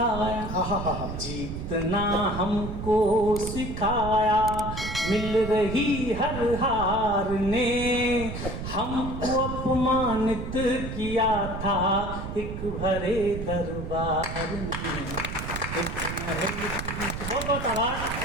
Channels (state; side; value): noise; right; rumble, 6 dB below the sound